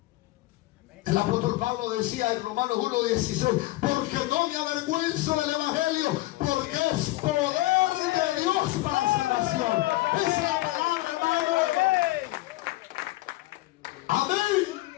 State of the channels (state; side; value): quieter; right; 18.6 dB